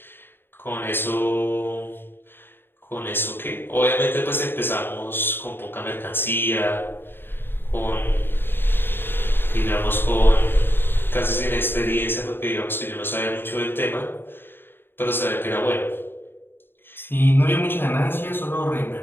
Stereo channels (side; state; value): right; late; 0.10 ms